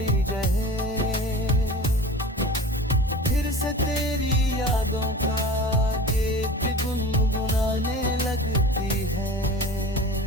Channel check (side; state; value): both; normal; correlation 0.37